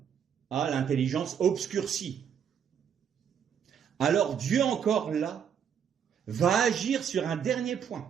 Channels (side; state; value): left; quieter; 8.0 dB